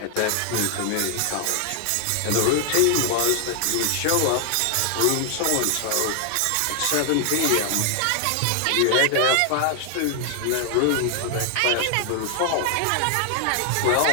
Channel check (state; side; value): different; both; correlation 0.00